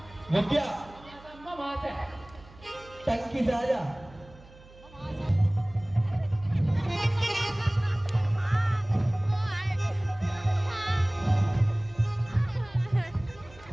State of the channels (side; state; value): right; noise; hum, 23 dB below the sound